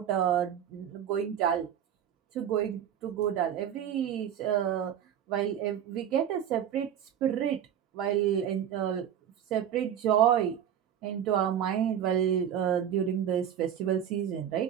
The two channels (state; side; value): quieter; left; 9.6 dB